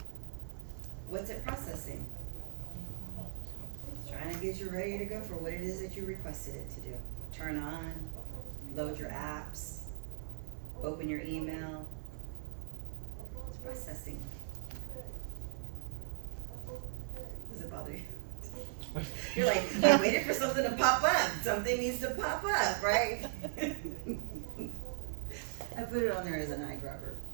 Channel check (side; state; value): left; silent; 52 dB below the other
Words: What's it processing? It's trying to get you ready to go for what it is that you requested it to do. Turn on, load your apps, open your email. It's processing. Does it bother you? You're like, I waited for something to pop up. Something needs to pop up, right? I put it on there as an eyedropper.